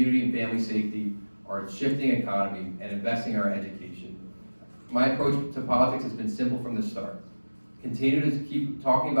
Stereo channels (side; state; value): both; inverted; correlation -1.00